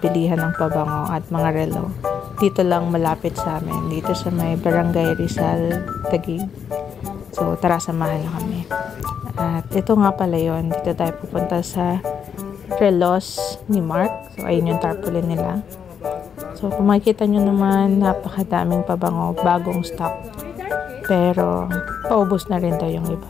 ng pabango at mga relo. Dito lang malapit sa amin, dito sa may Barangay Rizal, Taguig. So tara, samahan na kami. At ito nga pala yun, dito tayo pupunta sa relos ni Mark. So ayun yung tarpaulin nila. So, kung makikita nyo naman, napakadaming pabango, bagong stock. Pero, paubos na rin daw yung iba.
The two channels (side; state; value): right; quieter; 7.5 dB